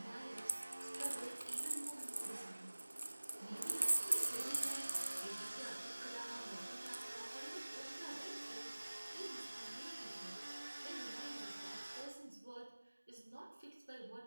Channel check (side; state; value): both; inverted; correlation -1.00